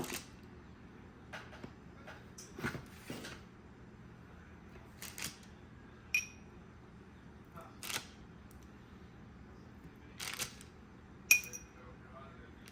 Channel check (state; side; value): identical; both; correlation 1.00